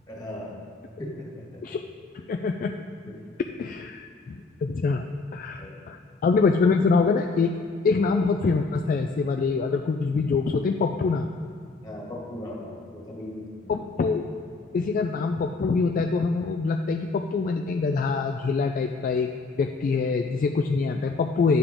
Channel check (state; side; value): quieter; right; 4.0 dB